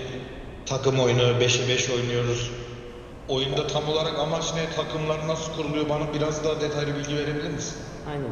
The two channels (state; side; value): identical; both; correlation 1.00